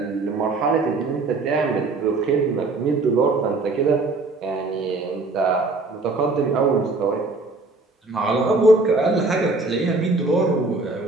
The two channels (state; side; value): quieter; left; 3.4 dB